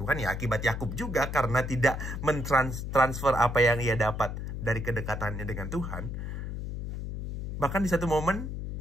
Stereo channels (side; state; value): left; noise; hum, 5 dB below the sound